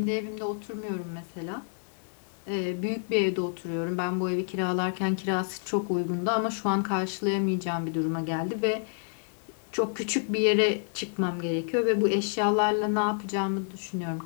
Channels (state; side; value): silent; right; digital silence